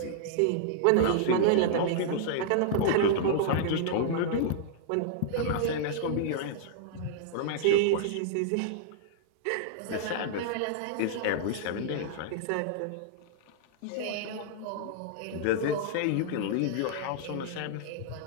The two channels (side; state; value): both; different; correlation -0.01